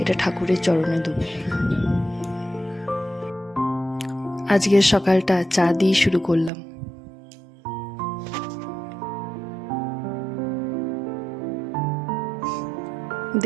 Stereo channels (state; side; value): drops out; left; at 6.5 s